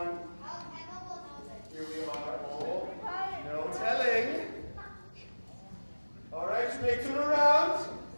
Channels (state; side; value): inverted; both; correlation -1.00